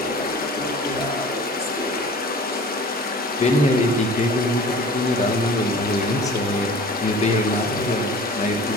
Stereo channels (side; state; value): both; normal; correlation 0.43